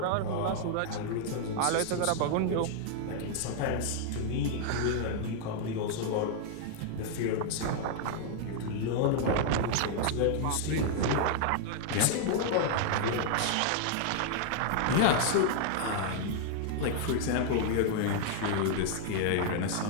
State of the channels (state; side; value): different; both; correlation 0.00